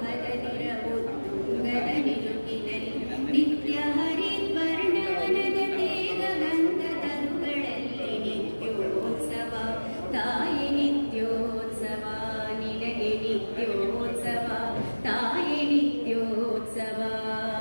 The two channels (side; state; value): both; inverted; correlation -1.00